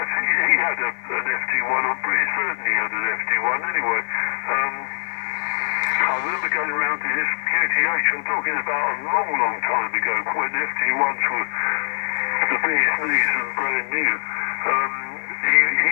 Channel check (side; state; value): right; silent; digital silence